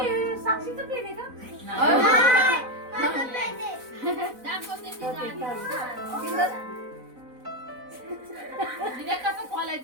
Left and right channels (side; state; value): left; late; 4.0 ms